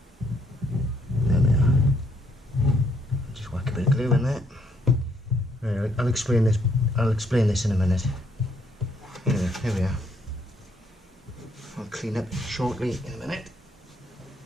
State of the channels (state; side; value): normal; both; correlation 0.70